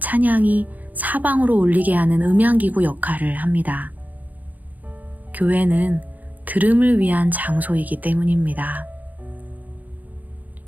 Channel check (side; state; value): left; late; 0.080 ms